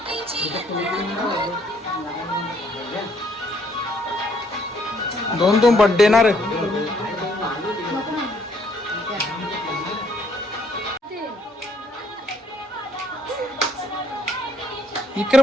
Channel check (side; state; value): both; normal; correlation 0.67